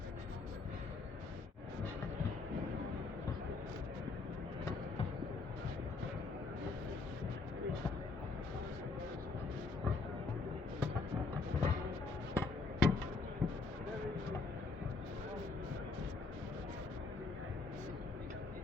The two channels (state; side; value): quieter; right; 4.3 dB